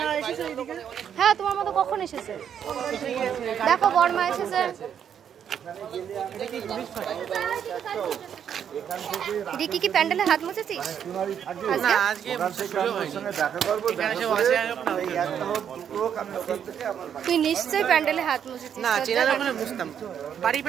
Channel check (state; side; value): quieter; left; 8.6 dB